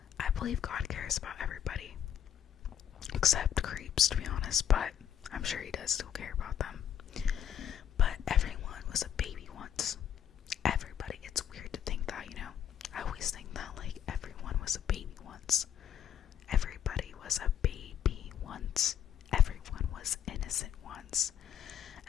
I believe God cares about everybody. Except creeps, to be honest, but I'm sure he does still care about them. But everyone was a baby once. Everybody. It's weird to think that, you know? I always think that, like, everyone was a baby once. Everybody was a baby once. Everyone was innocent once.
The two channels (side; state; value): right; quieter; 9.5 dB